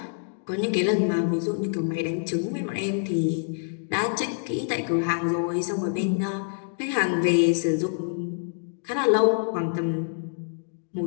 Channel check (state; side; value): silent; right; digital silence